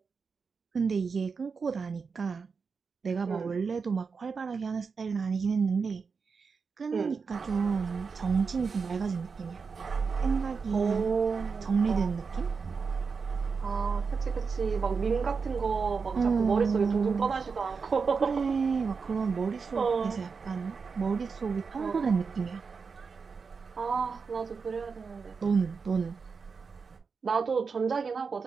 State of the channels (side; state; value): left; quieter; 5.2 dB